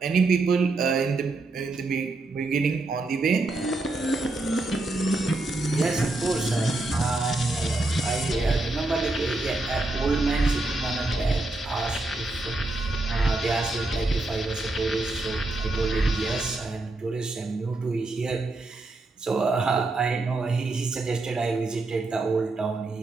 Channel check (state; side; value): quieter; left; 3.0 dB